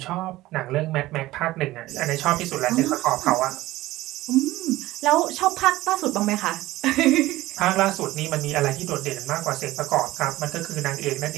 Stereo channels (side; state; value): left; quieter; 17.3 dB